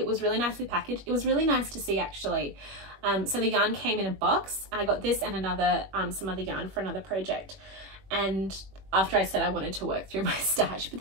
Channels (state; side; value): late; left; 21 ms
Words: was really nicely packaged. It was really nice to see, actually. So the yarn came in a box. I got this and another some other yarn for another project, and after I said I wanted to work through my stash, but